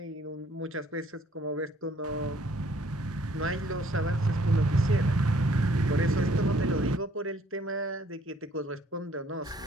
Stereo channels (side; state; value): both; normal; correlation 0.61